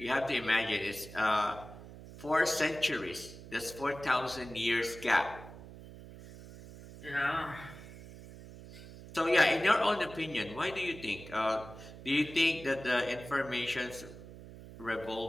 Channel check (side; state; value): right; noise; hum, 15 dB below the sound